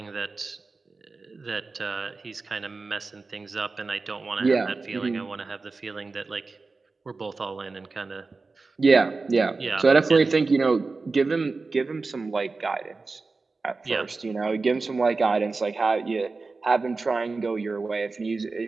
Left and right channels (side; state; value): left; quieter; 3.9 dB